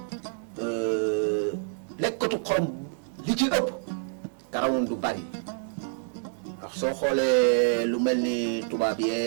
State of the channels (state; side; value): silent; left; digital silence